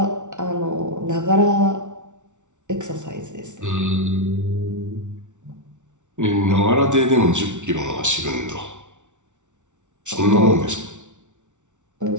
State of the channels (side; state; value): left; late; 0.85 ms